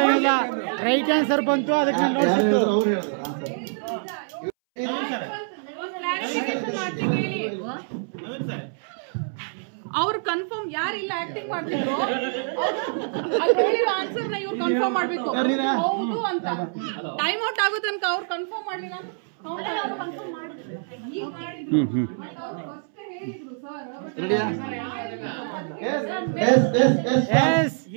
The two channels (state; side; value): silent; left; 62 dB below the other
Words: ಇಲ್ಲ, ರೈಟ್ ಆನ್ಸರ್ ಬಂತು ಅದಕ್ಕೆ ನಾನು ಯಾರು ಹೇಳಿದ್ರು ನೋಡ್ತಿದ್ದು. ಅವ್ರು ಹೇಳಿದ್ರು ಆನ್ಸರ್. ಕ್ಲಾರಿಫಿಕೇಶನ್ ಮಾಡ್ತೀನಿ ಹೇಳಿ. ಅವ್ರು ಕನ್ಫರ್ಮ್ ಯಾರಿಲ್ಲ ಆಕ್ಟಿಂಗ್ ಮಾಡ್ತಿದ್ರು ಅವ್ರು ಹೇಳಿರೋ ಆನ್ಸರ್ ನ ಇವ್ರು ಕನ್ಫರ್ಮ್ ಮಾಡ್ಬೇಕು ಹೌದು ಅಂತ. ಟೈಮ್ ಔಟ್ ಆಗೋ ತನಕ ಅವ್ರು ಕನ್ಫರ್ಮ್ ಮಾಡಿಲ್ಲ. ರೆಡಿಯಾ? Yes